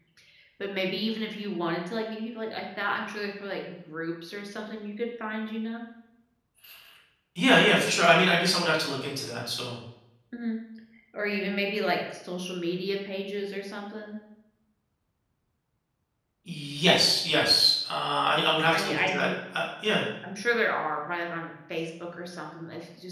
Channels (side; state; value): both; identical; correlation 1.00